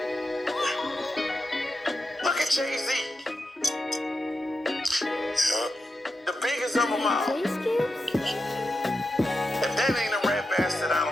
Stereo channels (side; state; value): both; normal; correlation 0.89